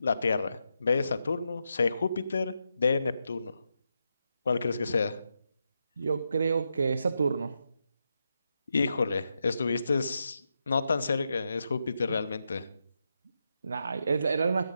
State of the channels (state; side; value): inverted; both; correlation -0.85